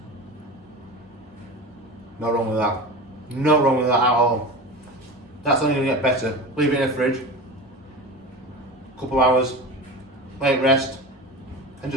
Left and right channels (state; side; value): normal; both; correlation 0.29